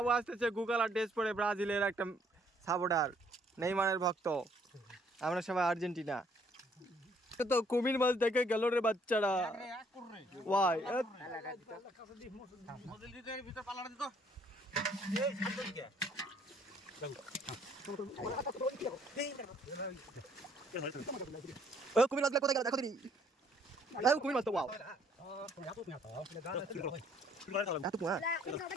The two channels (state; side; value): normal; both; correlation 0.64